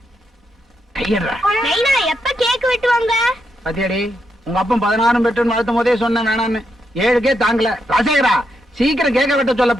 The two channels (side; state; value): both; normal; correlation 0.82